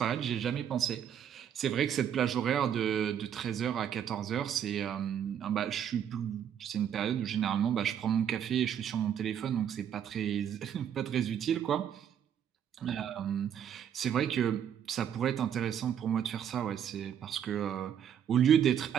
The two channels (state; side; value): quieter; left; 9.1 dB